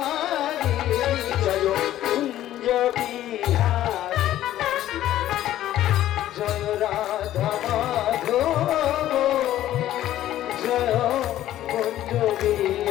জয় কুঞ্জ বিহারী জয় রাধা মাধব জয় কুঞ্জ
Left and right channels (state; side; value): quieter; right; 13.1 dB